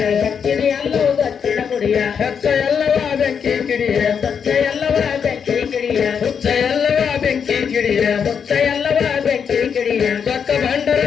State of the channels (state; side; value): quieter; right; 7.0 dB